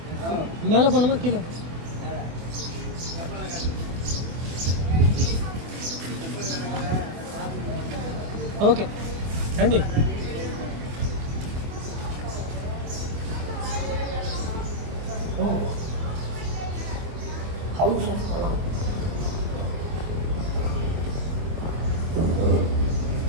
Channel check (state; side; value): late; left; 24 ms